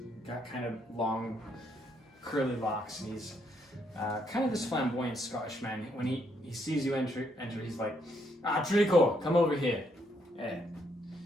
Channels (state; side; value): normal; both; correlation 0.73